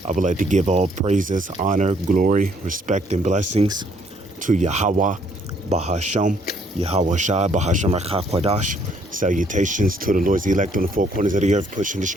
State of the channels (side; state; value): both; normal; correlation 0.66